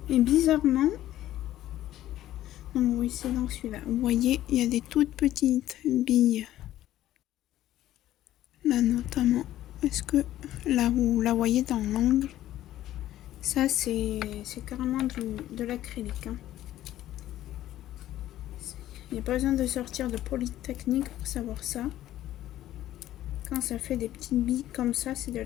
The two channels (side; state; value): right; quieter; 13.5 dB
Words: Et bizarrement, donc oui, c'est dans celui-là. Vous voyez, il y a des toutes petites billes. Là notamment. Est-ce que là vous la voyez dans l'angle? Ça c'est carrément de l'acrylique. Hein. Il n'y a pas besoin de sortir de Polytechnique pour savoir ça. Quand ça fait des petites billes comme ça, c'est de